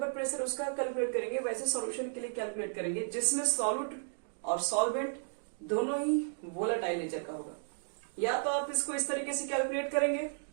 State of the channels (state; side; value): silent; left; digital silence